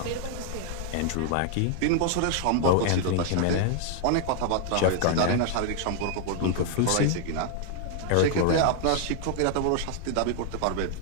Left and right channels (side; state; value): both; different; correlation 0.00